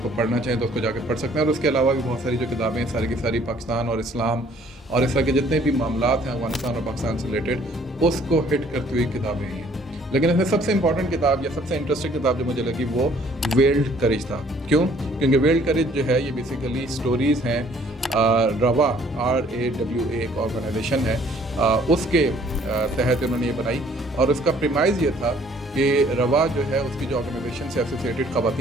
पढ़ना चाहें तो उसको जाके पढ़ सकते हैं। और उसके अलावा भी बहुत सारी जो किताबें हैं सारी की सारी पाकिस्तान और इस्लाम और इस तरह के जितने भी मामलात हैं अफगानिस्तान और पाकिस्तान से रिलेटेड उसको हिट करती हुई किताबें हैं। लेकिन इसमें सबसे इंपॉर्टेंट किताब या सबसे इंटरेस्टिंग किताब जो मुझे लगी वो वेल्ड करेज था। क्यों? क्योंकि वेल्ड करेज जो है ये बेसिकली स्टोरीज़ हैं। रवा RAWA एक ऑर्गेनाइजेशन है, उसके तहत उन्होंने ये बनाई। और उसका प्रीमाइज़ ये था कि रवा जो है उसकी जो ऑर्गेनाइजेशन से एसोसिएटेड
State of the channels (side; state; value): both; normal; correlation 0.59